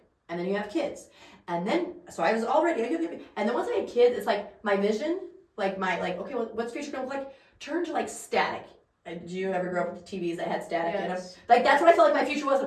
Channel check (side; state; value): both; identical; correlation 1.00